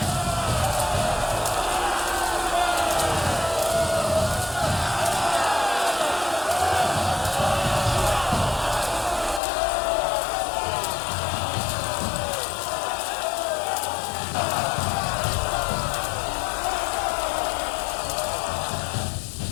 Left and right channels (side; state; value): right; drops out; at 9.4 s